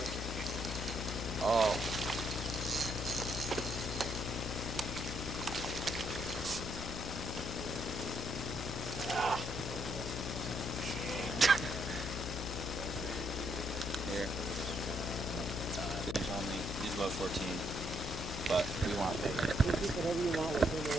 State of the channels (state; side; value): noise; left; hum, 5 dB below the sound